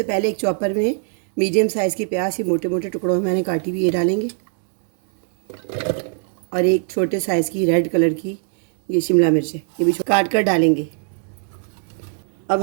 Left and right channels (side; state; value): left; silent; 55 dB below the other